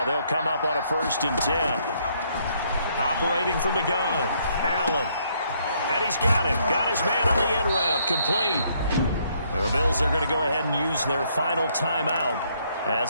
they'll come up on a 1st and 10. Operating from the gun, Allen. And he's got him. Got his man on the end route. Complete. The Bills are going to go ahead and use their final timeout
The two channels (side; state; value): both; inverted; correlation -0.69